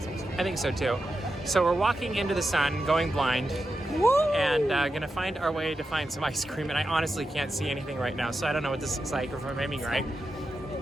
ice cream. I think so too. So we're walking into the sun, going blind, and gonna find our way to find some ice cream. And I honestly can't see anything right now, so I don't know what this looks like or if I'm aiming right.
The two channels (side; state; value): both; normal; correlation 0.89